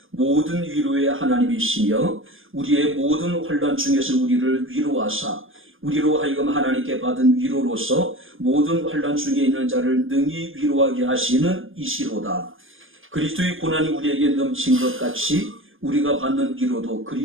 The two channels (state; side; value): late; left; 0.59 ms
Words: 모든 위로의 하나님이시며 우리의 모든 환난 중에서 우리를 위로하사 우리로 하여금 하나님께 받은 위로로서 모든 환난 중에 있는 자를 능히 위로하게 하시는 이시로다. 그리스도의 고난이 우리에게 넘친 것 같이 우리가 받는 위로도